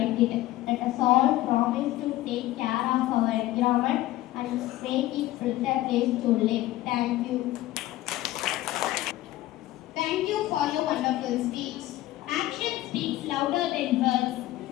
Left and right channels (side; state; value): right; quieter; 16.0 dB